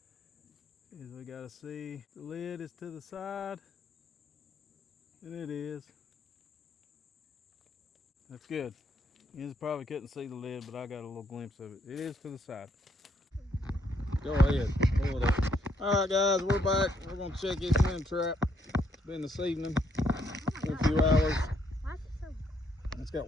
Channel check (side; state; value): both; normal; correlation 0.72